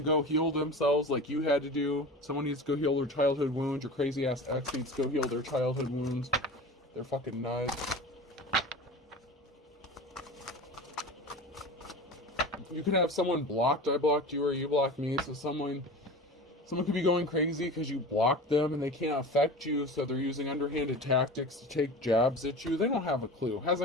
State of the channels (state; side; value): normal; both; correlation 0.33